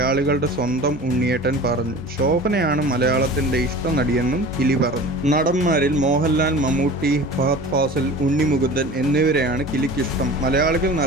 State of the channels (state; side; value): normal; both; correlation 0.38